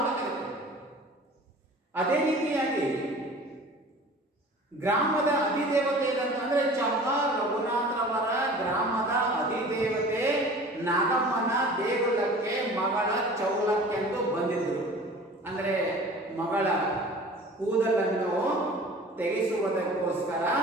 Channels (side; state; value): both; normal; correlation 0.43